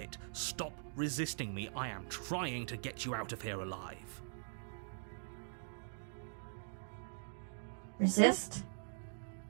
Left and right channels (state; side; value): silent; left; digital silence